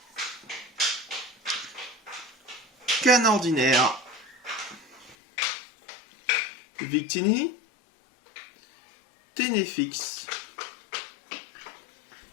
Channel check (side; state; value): right; drops out; at 5.2 s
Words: Canne ordinaire, Victini, Ténéfix,